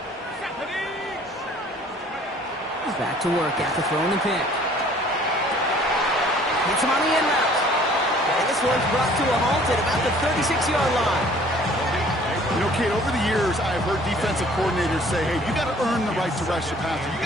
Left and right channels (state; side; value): normal; both; correlation 0.54